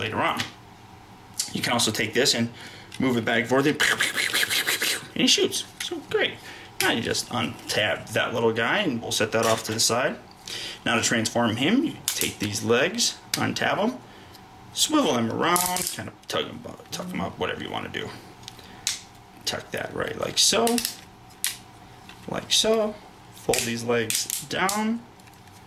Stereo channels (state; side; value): identical; both; correlation 1.00